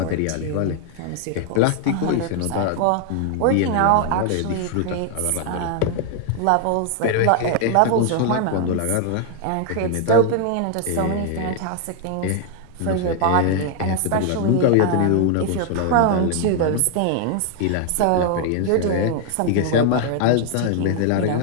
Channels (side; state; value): both; different; correlation 0.00